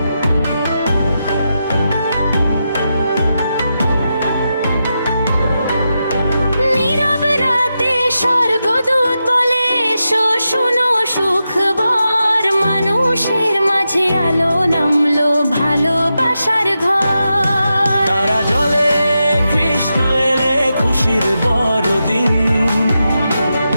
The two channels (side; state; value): both; inverted; correlation -0.88